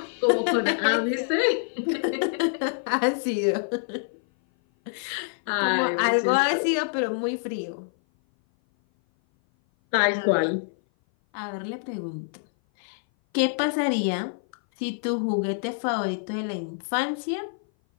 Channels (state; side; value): silent; right; 57 dB below the other